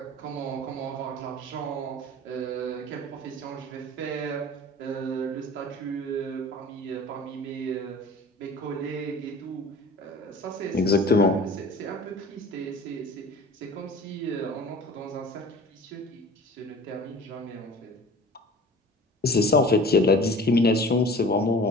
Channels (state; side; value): normal; both; correlation 0.41